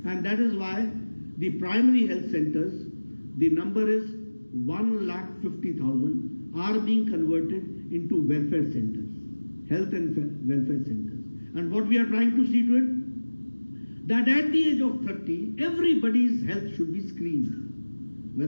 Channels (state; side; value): inverted; both; correlation -1.00